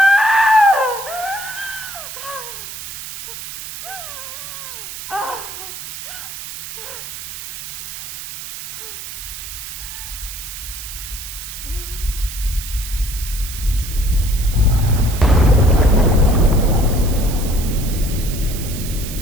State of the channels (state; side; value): noise; right; hiss, 10 dB below the sound